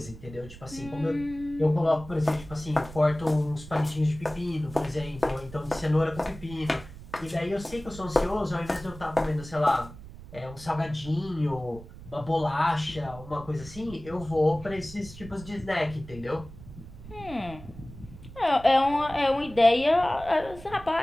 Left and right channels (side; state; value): right; noise; rumble, 16 dB below the sound